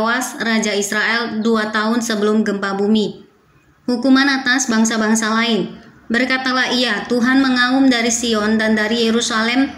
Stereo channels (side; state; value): both; identical; correlation 1.00